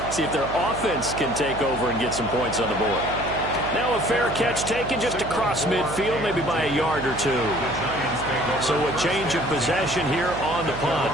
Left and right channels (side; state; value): right; noise; hum, 9 dB below the sound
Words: See if their offense can take over and get some points on the board. Now a fair catch taken just across midfield, maybe by a yard or two. So a change of possession here on the punt.